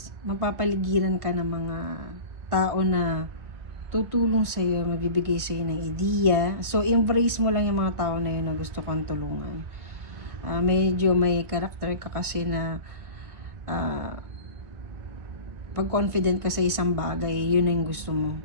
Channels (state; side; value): late; left; 2.3 ms